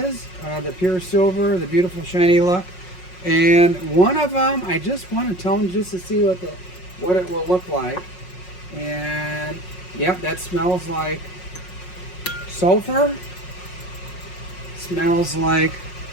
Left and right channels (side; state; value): right; late; 5.5 ms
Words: the pure silver, the beautiful shiny look. And one of them, I just want to tone just to see what it will look like. And yep, that smells like sulfur. Smells like